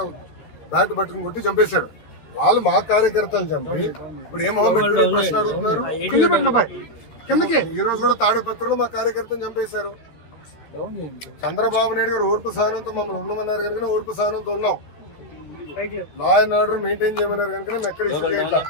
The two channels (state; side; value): late; right; 13 ms